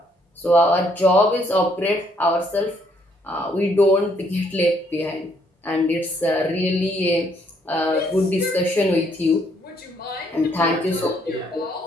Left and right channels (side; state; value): both; normal; correlation 0.69